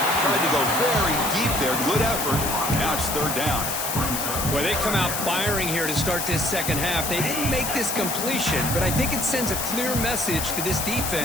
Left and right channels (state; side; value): noise; left; hiss, 3 dB below the sound